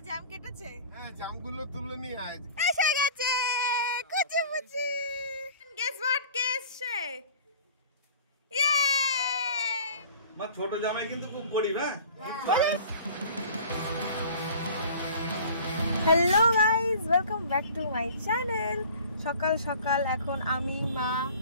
জ্যাম কেটেছে? হ্যাঁ, জ্যামগুলো তুলে নিয়ে আয়। এসে গেছে কুচি মুচি। Guess what কেসে? ইয়ে! মা ছোট জামাই কিন্তু খুব গরিব, হ্যাঁ? Hello guys, welcome back to my channel. সকাল সকাল এখন আমি, মা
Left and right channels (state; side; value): inverted; both; correlation -0.45